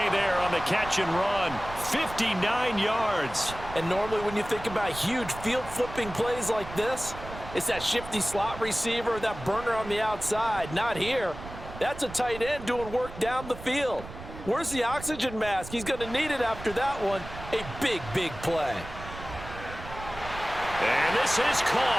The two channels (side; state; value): right; noise; rumble, 13 dB below the sound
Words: there on the catch and run. 59 yards. And normally when you think about huge field-flipping plays like this, it's that shifty slot receiver, that burner on the outside. Not here. That's a tight end doing work down the field. Where's the oxygen mask? He's going to need it after that one. A big, big play. And this is